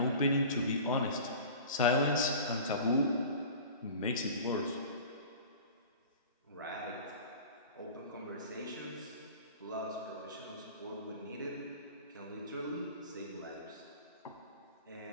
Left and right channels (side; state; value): both; inverted; correlation -0.39